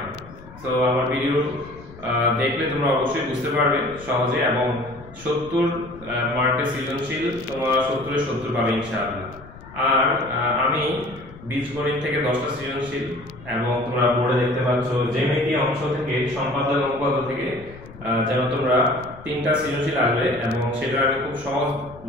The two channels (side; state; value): left; noise; rumble, 19 dB below the sound